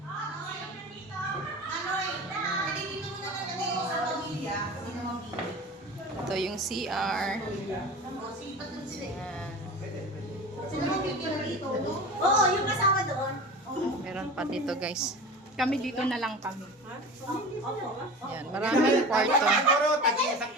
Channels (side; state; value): both; normal; correlation 0.34